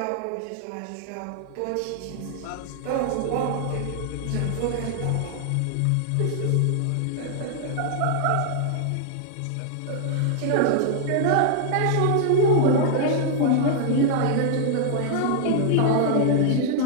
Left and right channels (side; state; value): both; different; correlation -0.01